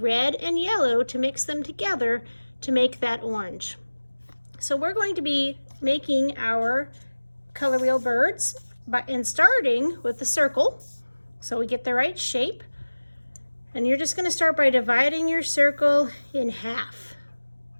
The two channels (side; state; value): both; inverted; correlation -1.00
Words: and yellow to mix them together to make that orange. So we're going to be making our color wheel birds and starting with the circle so we get the right shape. And you're just going to start by dividing your circle in half.